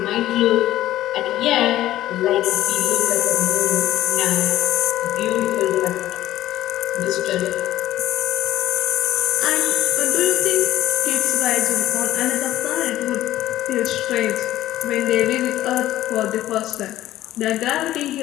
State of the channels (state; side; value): quieter; right; 14.3 dB